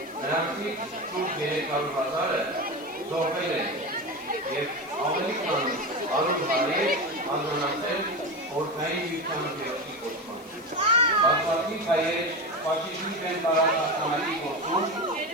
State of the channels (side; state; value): left; noise; hiss, 23 dB below the sound